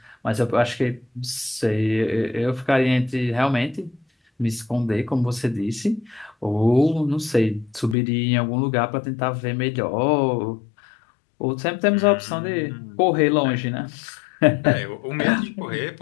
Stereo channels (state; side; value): drops out; right; at 8.0 s